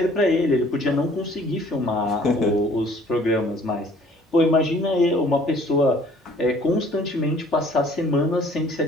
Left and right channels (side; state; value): both; normal; correlation 0.55